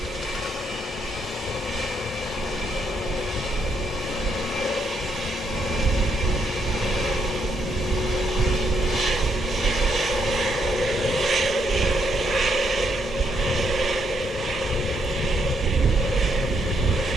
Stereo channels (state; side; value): normal; both; correlation 0.76